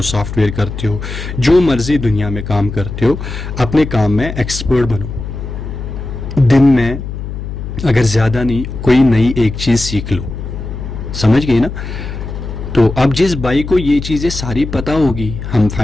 सॉफ्टवेयर करते हो, जो मर्जी दुनिया में काम करते हो, अपने काम में एक्सपर्ट बनो। दिन में अगर ज़्यादा नहीं, कोई नई एक चीज़ सीख लो। समझ गए ना। तो अब जिस भाई को ये चीज़ें सारी पता होगी, हम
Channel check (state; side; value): noise; left; hum, 7 dB below the sound